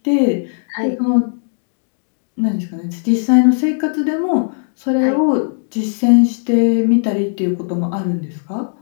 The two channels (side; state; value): right; silent; digital silence